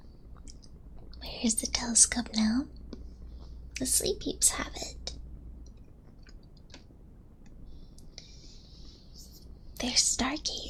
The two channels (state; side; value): identical; both; correlation 1.00